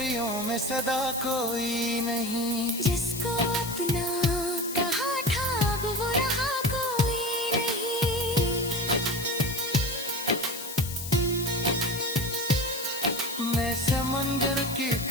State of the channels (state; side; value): noise; left; hiss, 8 dB below the sound